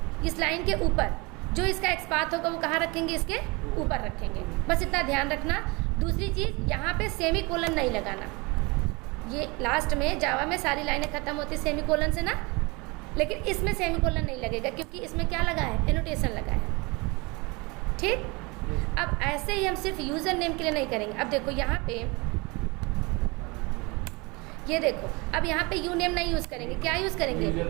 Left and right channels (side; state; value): left; quieter; 26.6 dB